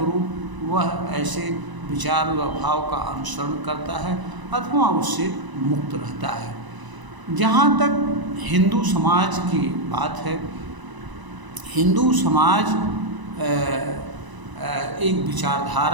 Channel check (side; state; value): left; late; 1.0 ms